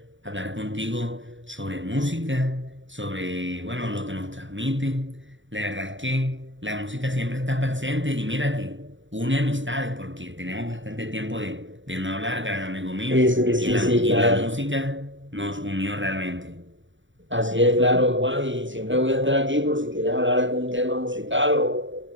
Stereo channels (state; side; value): late; left; 0.55 ms